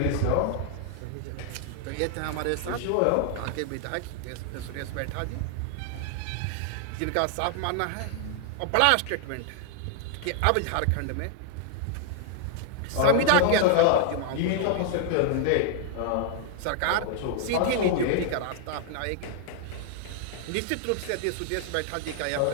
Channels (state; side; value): different; both; correlation 0.00